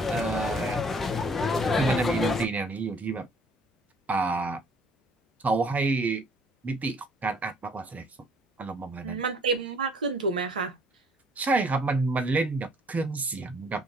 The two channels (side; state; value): both; normal; correlation 0.60